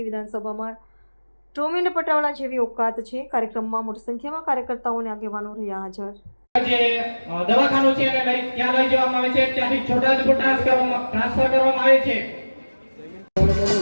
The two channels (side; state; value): both; inverted; correlation -1.00